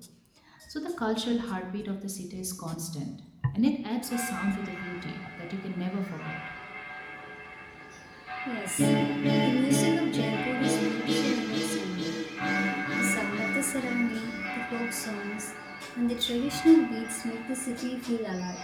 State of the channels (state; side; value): identical; both; correlation 1.00